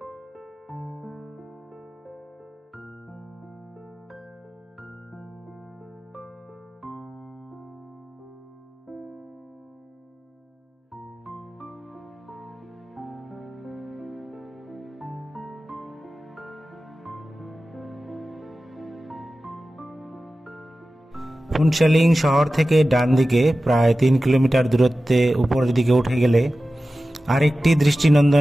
ফুনশেলিং শহর থেকে ডান দিকে প্রায় 3 কিলোমিটার দূরত্বে উপরের দিকে উঠে গেলে আরেকটি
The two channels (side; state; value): both; normal; correlation 0.95